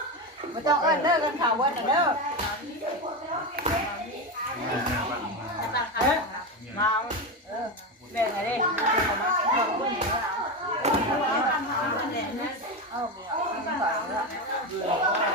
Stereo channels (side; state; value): both; normal; correlation 0.16